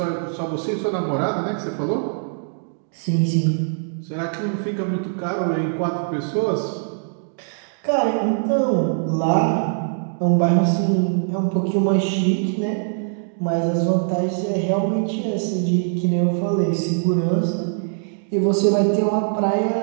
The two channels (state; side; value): silent; left; digital silence